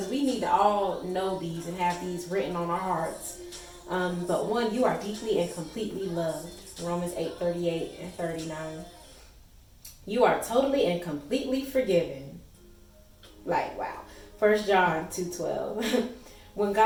we need to all know these and have these written on our hearts. But one, you are deeply and completely loved. Romans 8:38 and 39. You are totally and completely forgiven. Like, wow. 1 John 2:12. When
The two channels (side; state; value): both; identical; correlation 1.00